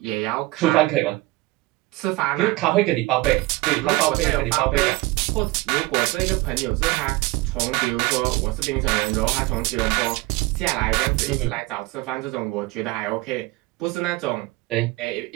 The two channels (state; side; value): quieter; left; 20.8 dB